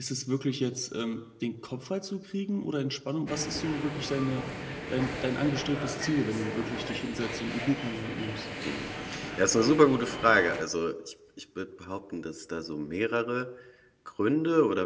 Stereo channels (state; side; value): identical; both; correlation 1.00